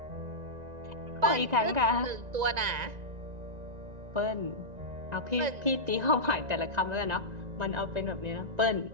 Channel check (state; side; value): late; left; 1.9 ms